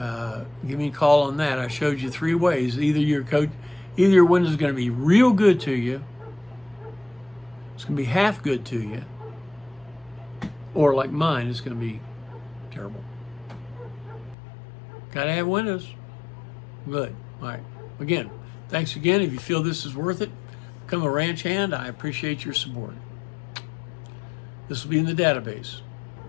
give me a call on that. I showed you 3 ways. Either your window is going to be real good to you, it's going to be half good to you, or like mine, it's going to be terrible. Got to have windows. Good. All right. Again, thanks again. If you feel this is worth it, become a ranch hand. I appreciate your support. This will be in the database.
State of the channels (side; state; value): right; drops out; at 14.4 s